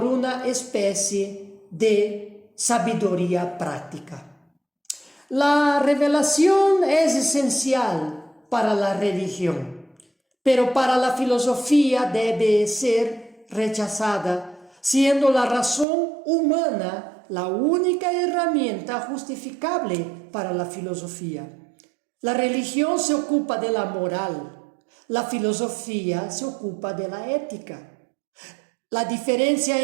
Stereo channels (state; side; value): drops out; left; at 15.9 s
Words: una especie de sabiduría práctica. La revelación es esencial para la religión, pero para la filosofía debe ser rechazada, siendo la razón humana la única herramienta justificable para la filosofía. La religión se ocupa de la moral, la filosofía se ocupa de la ética. La diferencia